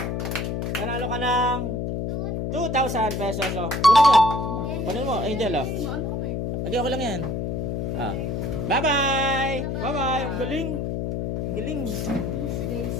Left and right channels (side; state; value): left; noise; hum, 2 dB below the sound